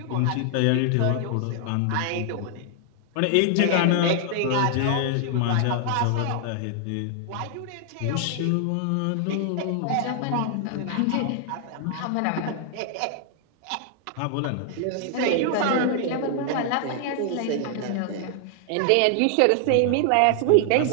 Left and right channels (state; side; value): different; both; correlation 0.00